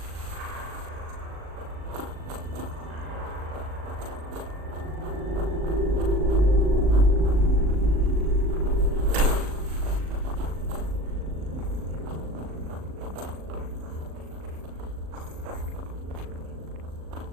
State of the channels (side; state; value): left; late; 38 ms